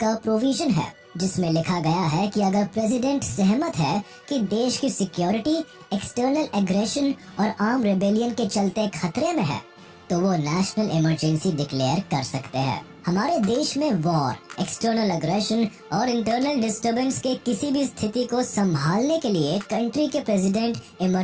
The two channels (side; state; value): both; identical; correlation 1.00